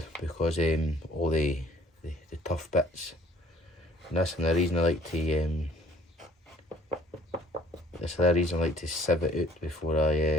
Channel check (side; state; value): both; normal; correlation 0.57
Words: because all the tough bits. And that's another reason I like to sieve it out before